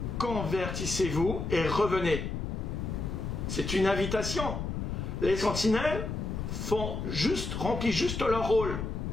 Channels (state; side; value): noise; left; rumble, 4 dB below the sound